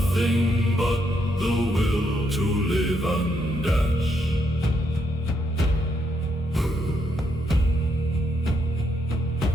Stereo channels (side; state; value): both; normal; correlation 0.77